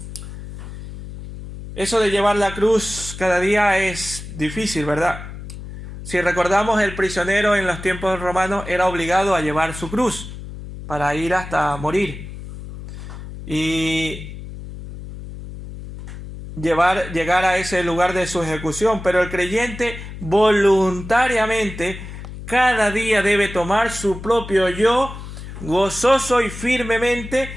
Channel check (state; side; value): noise; left; hum, 11 dB below the sound